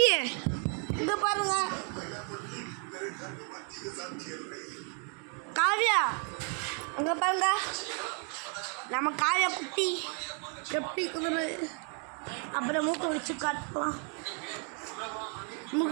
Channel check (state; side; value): quieter; left; 39.5 dB